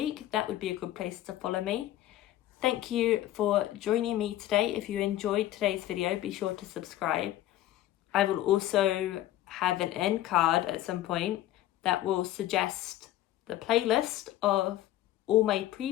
that would be a good place to follow me. Thank you for joining me today. If you enjoyed today's video, be sure to subscribe. I will also have an end card at some point that will suggest the playlist of all my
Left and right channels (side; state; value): right; quieter; 14.0 dB